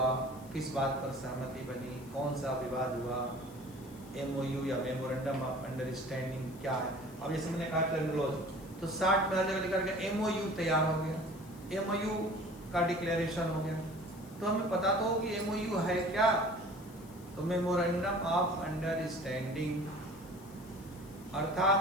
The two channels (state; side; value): noise; left; hiss, 23 dB below the sound